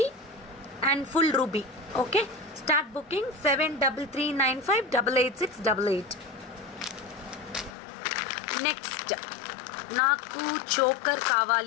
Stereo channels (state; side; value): drops out; right; at 7.8 s